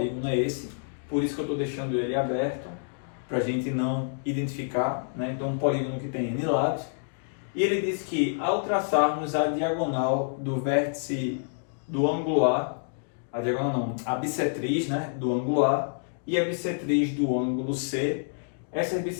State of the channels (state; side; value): silent; right; digital silence